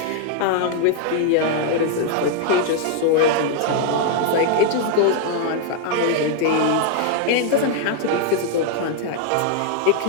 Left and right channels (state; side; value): different; both; correlation 0.00